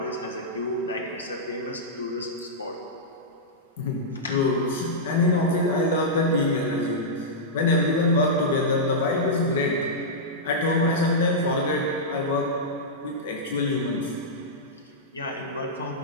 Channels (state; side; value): normal; both; correlation -0.11